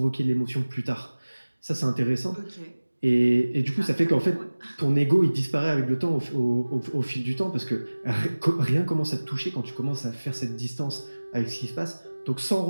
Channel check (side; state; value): both; inverted; correlation -1.00